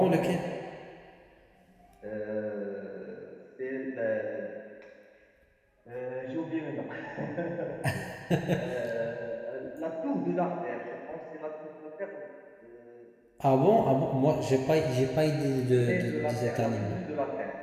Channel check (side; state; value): both; identical; correlation 1.00